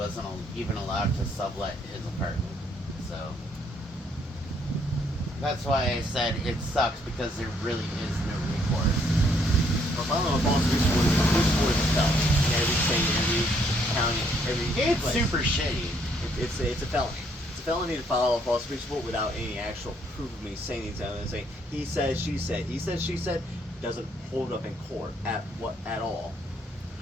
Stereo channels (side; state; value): both; normal; correlation 0.69